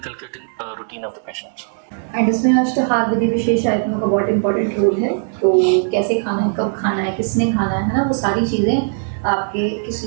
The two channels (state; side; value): silent; left; 65 dB below the other